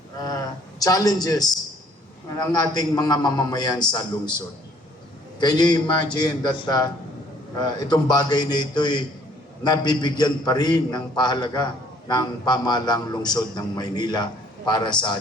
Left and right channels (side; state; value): both; normal; correlation 0.60